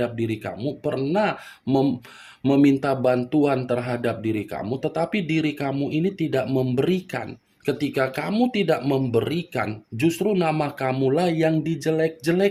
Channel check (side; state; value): both; identical; correlation 1.00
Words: diri kamu, pernah meminta bantuan terhadap diri kamu, tetapi diri kamu ini tidak memberikan. Ketika kamu tidak memberikan, justru nama kamulah yang